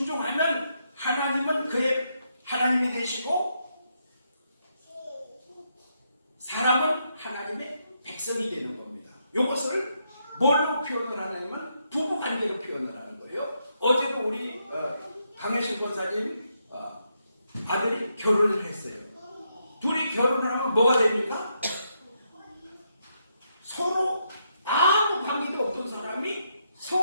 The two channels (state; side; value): inverted; both; correlation -0.79